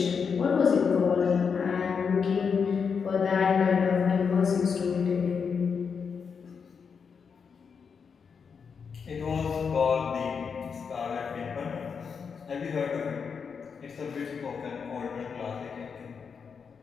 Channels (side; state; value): right; quieter; 6.1 dB